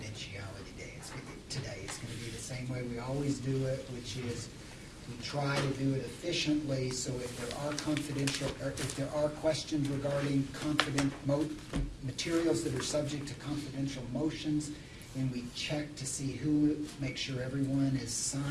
today. It's going to be the same way we always do it, which is We try to do it efficiently, so if there are confidential, or if there are questions regarding materials that are subject to confidential motions, and we check to see who, make sure everyone has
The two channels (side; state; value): both; identical; correlation 1.00